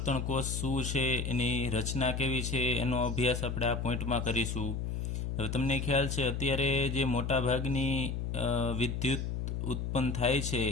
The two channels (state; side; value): noise; left; hum, 2 dB below the sound